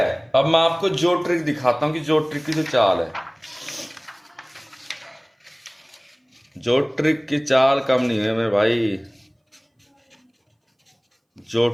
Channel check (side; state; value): both; identical; correlation 1.00